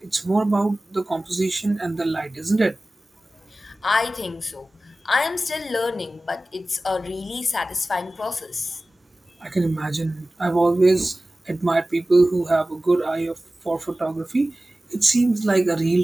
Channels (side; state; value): both; normal; correlation 0.97